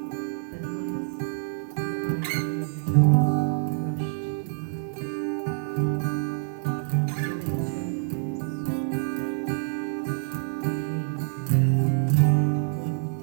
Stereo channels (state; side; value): silent; left; 60 dB below the other